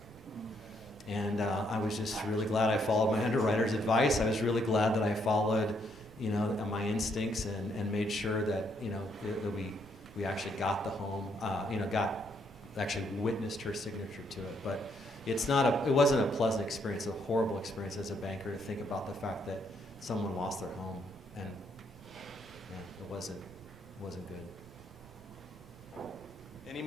And I was just really glad I followed my underwriter's advice. I was really glad that I followed, my instincts and made sure that, that we actually got the home, actually witnessed her signature to it. But it wasn't a pleasant experience, a horrible experience as a banker to think about the fact that someone lost their home, and it wasn't good. Any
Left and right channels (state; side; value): noise; right; rumble, 21 dB below the sound